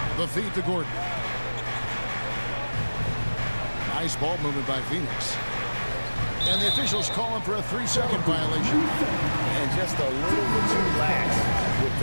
The feed to Gordon. Nice ball movement by Phoenix. And the officials calling for a 3-second violation. And just a little bit too lax with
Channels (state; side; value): inverted; both; correlation -1.00